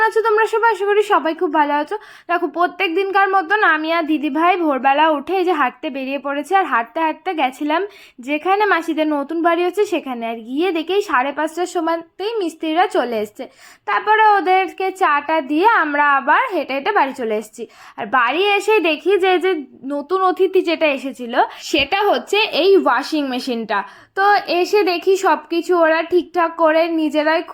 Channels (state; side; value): identical; both; correlation 1.00